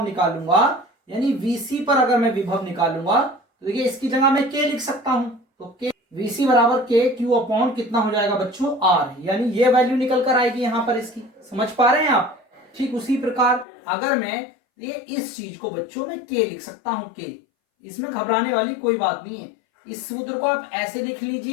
निकालूंगा, यानी VC पर अगर मैं विभव निकालूंगा, तो देखिए इसकी जगह मैं K लिख सकता हूं। तो K VC बराबर K Q अपॉन कितना हो जाएगा बच्चों, R, यानी ये वैल्यू निकल कर आएगी यहां पर इसकी। समझ पा रहे हैं आप? ठीक उसी प्रकार अगर मैं ये इस चीज को बच्चों में K लिख सकता हूं, K, इसमें घबराने वाली कोई बात नहीं है। इस सूत्र को आप ऐसे लिख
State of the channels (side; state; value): right; drops out; at 13.7 s